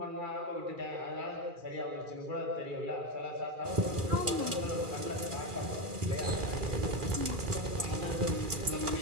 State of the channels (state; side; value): late; left; 2.4 ms